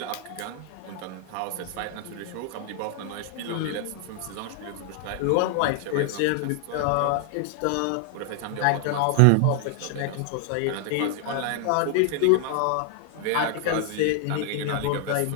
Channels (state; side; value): different; both; correlation 0.00